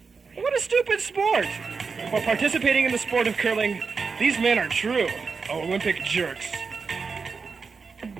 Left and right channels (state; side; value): quieter; left; 5.0 dB